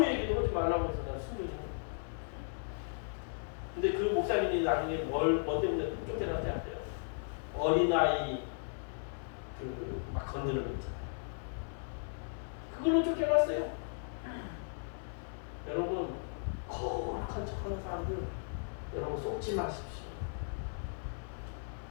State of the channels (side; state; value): right; silent; 54 dB below the other